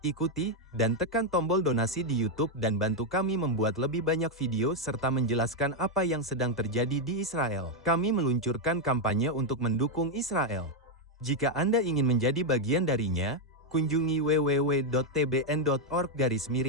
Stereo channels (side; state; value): both; normal; correlation 0.02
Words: ikuti, dan tekan tombol donasi di YouTube dan bantu kami membuat lebih banyak video serta menjelaskan apa yang sedang terjadi di Israel. Kami meluncurkan kampanye untuk mendukung Israel. Jika Anda ingin menjadi bagian darinya, kunjungi